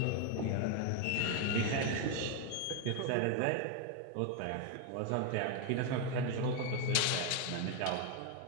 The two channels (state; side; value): different; both; correlation 0.01